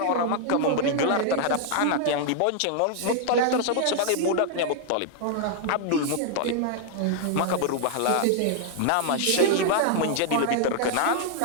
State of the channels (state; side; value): different; both; correlation 0.00